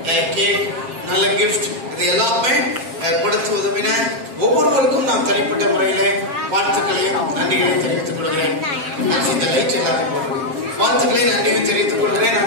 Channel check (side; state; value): left; late; 7.5 ms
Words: கேக், நல்ல கிஃப்ட், இது எல்லாமே கொடுத்து உதவின ஒவ்வொருவருக்கும் நான் தனிப்பட்ட முறையில வாழ்த்துக்களையும் நன்றிகளையும் தெரிவித்துக் கொள்கிறேன். இந்த லைட் எல்லாரும் போடுறேன். வாழ்த்துக்களை நன்றியும் தெரிவித்துக் கொள்கிறேன்.